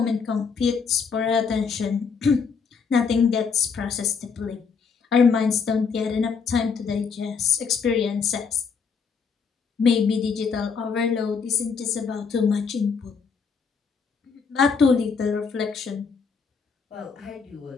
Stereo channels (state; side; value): quieter; right; 5.7 dB